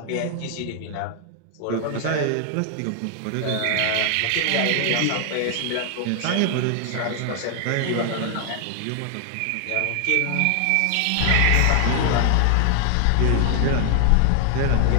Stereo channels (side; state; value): both; different; correlation 0.00